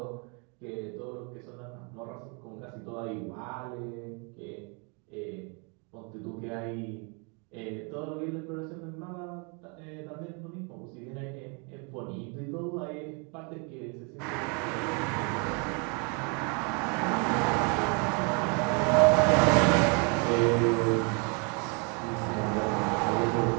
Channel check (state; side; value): quieter; left; 34.2 dB